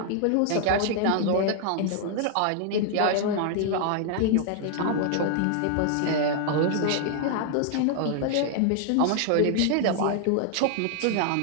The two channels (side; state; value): both; different; correlation 0.00